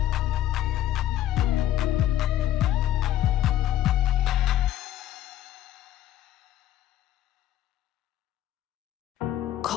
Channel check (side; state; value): right; quieter; 12.7 dB